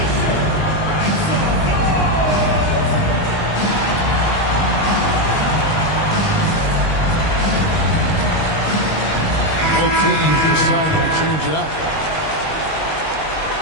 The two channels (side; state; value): right; late; 19 ms